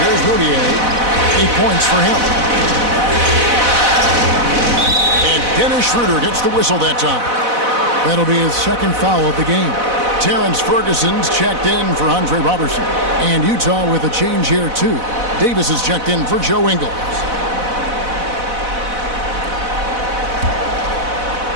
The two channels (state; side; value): late; left; 4.0 ms